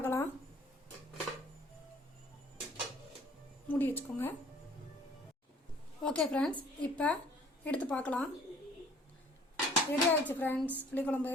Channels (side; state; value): both; normal; correlation 0.55